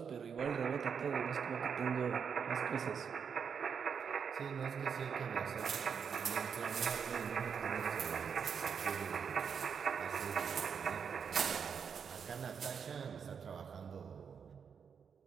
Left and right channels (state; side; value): quieter; left; 6.7 dB